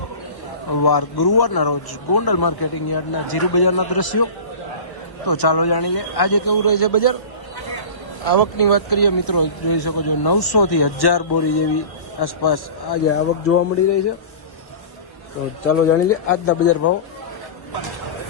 વાર ગુરુવારના રોજ ગોંડલ માર્કેટિંગ યાર્ડના જીરુ બજારના દ્રશ્યો. તો ચાલો જાણી લે આજે કેવું રહે છે બજાર. આવકની વાત કરીએ મિત્રો, જોઈ શકો છો 900 થી 1000 બોરી જેવી આસપાસ આજે આવક જોવા મળી રહી છે. તો ચાલો જાણી લે આજના બજાર ભાવ.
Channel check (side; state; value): right; late; 1.0 ms